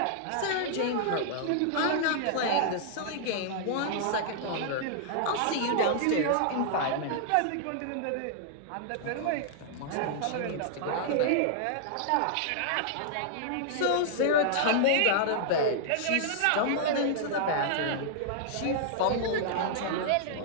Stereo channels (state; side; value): different; both; correlation -0.01